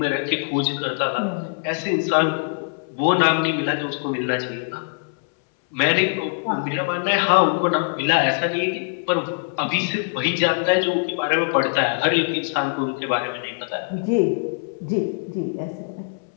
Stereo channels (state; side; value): silent; right; 63 dB below the other